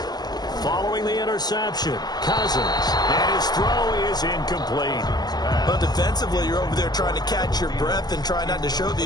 Following the interception, Cousins, and his throw is incomplete. But defensively, you're over there trying to catch your breath and try not to show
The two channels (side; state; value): right; late; 0.20 ms